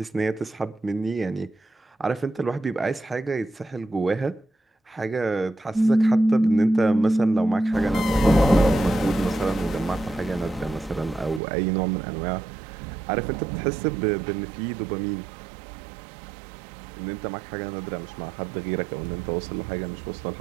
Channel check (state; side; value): drops out; left; at 11.4 s